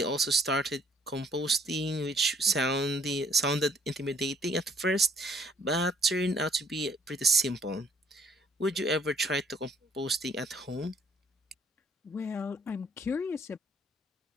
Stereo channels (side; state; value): both; normal; correlation 0.62